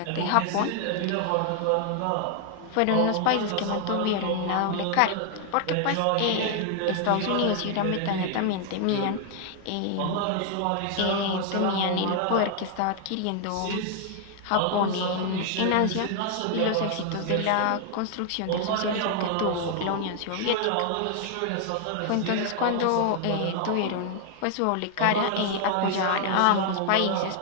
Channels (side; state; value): both; different; correlation 0.00